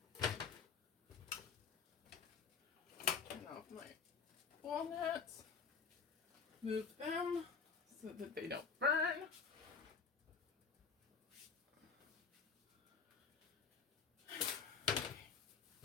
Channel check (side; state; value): right; quieter; 5.6 dB